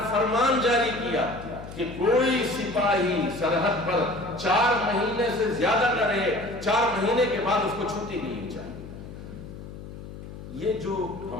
فرمان جاری کیا کہ کوئی سپاہی سرحد پر 4 مہینے سے زیادہ نہ رہے، 4 مہینے کے بعد اس کو چھٹی نہیں چاہیے۔ یہ جو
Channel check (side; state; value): left; noise; hum, 13 dB below the sound